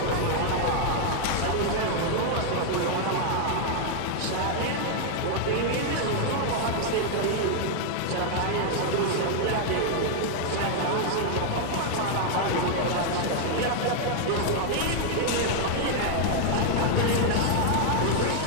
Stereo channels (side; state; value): both; different; correlation 0.00